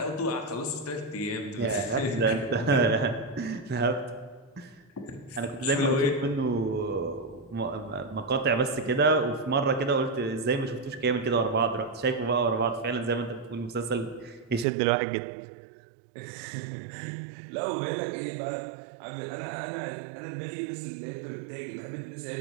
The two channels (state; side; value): drops out; left; at 14.7 s